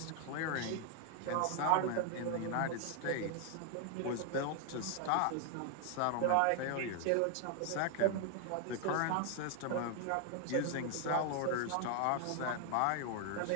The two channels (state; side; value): different; both; correlation 0.00